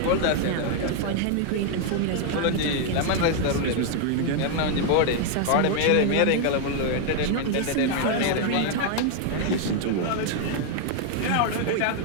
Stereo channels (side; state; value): both; different; correlation 0.00